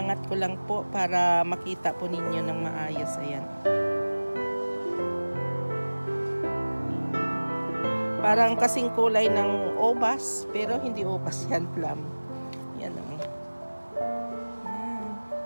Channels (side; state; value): both; inverted; correlation -1.00